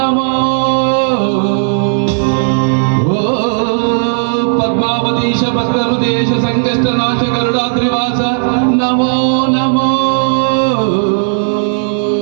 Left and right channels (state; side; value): silent; left; digital silence